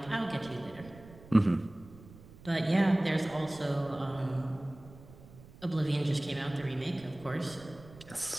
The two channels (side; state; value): right; noise; rumble, 20 dB below the sound